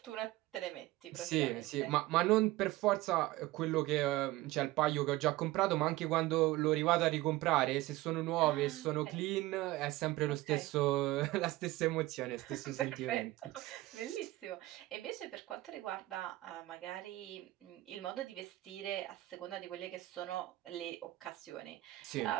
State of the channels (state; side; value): quieter; left; 17.9 dB